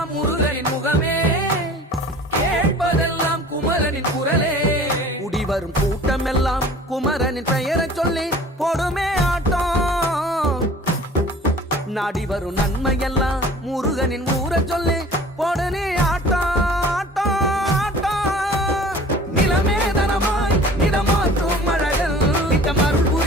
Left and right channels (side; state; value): both; normal; correlation 0.46